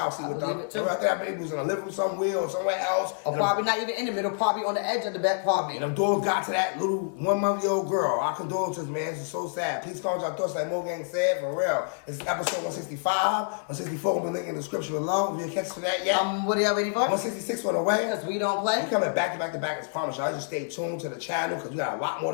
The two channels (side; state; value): right; silent; 60 dB below the other